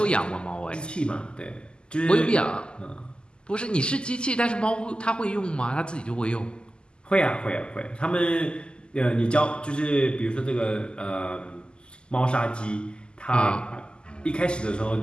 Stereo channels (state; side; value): late; right; 0.049 ms